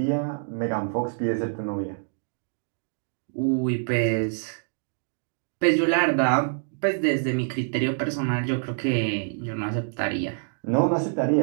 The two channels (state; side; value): silent; left; digital silence